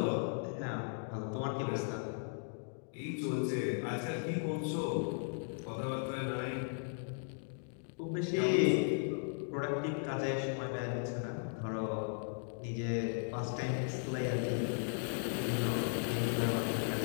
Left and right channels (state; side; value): silent; right; digital silence